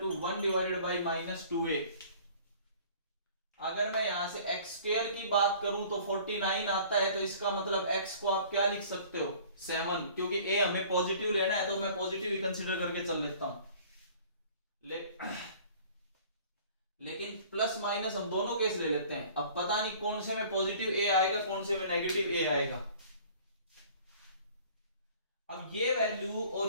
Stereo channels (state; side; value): inverted; both; correlation -0.50